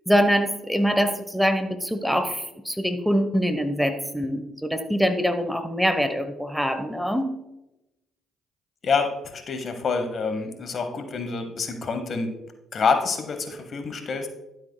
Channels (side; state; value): both; normal; correlation 0.88